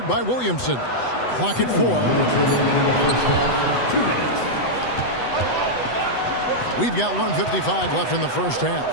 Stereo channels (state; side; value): late; right; 8.0 ms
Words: by Williamson. Clock at 4. 2 minutes. We've got 1:55 left in the first half.